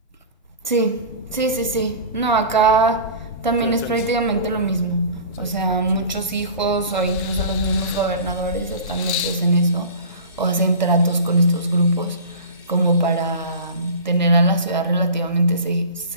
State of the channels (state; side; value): inverted; both; correlation -0.36